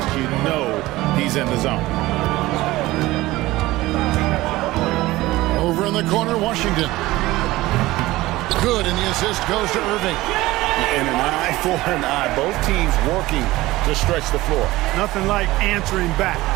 you know he's in the zone. Over in the corner, Washington. Good, and the assist goes to Irving. And an eye for an eye. Both teams working to stretch the floor. Nothing like answering back.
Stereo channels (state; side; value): quieter; left; 18.2 dB